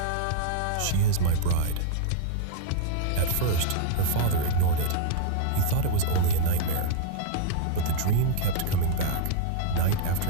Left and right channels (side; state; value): both; different; correlation -0.01